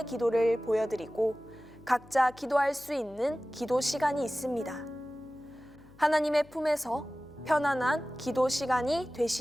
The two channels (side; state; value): left; noise; hum, 24 dB below the sound